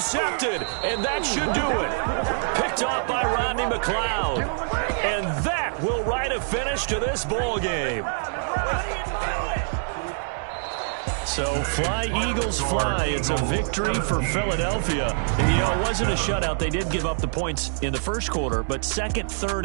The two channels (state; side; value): silent; left; digital silence